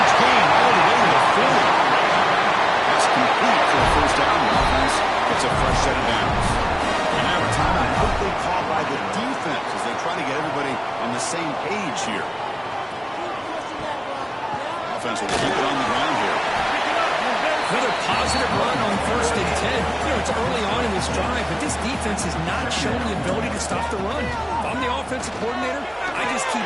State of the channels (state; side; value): identical; both; correlation 1.00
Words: gain all the way to the 40. That's complete for a first down. The offense gets a fresh set of downs. And now a timeout quickly called by the defense as they try to get everybody on the same page here. Offense will keep it on the ground here. Another positive run on 1st and 10. You know, it's early on in this drive, but this defense has not shown the ability to stop the run. If I'm the offensive coordinator, I just